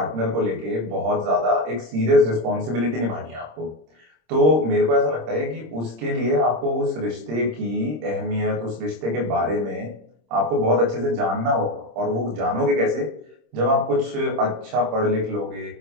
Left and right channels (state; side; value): late; left; 26 ms